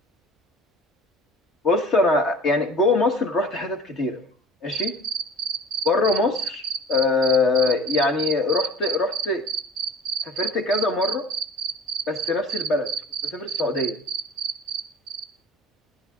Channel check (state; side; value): normal; both; correlation 0.43